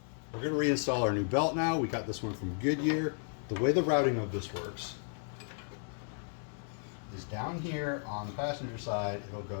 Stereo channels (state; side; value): silent; right; 55 dB below the other